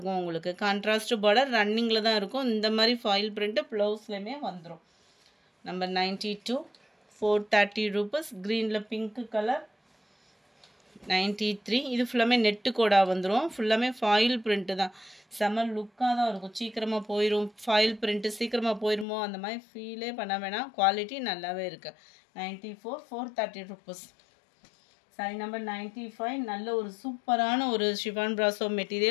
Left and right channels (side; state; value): right; drops out; at 19.1 s